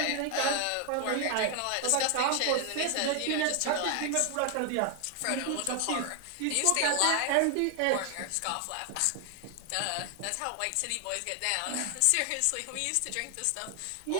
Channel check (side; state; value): both; different; correlation 0.00